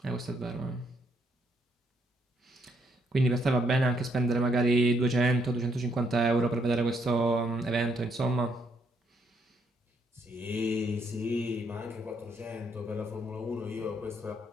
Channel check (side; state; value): both; normal; correlation 0.72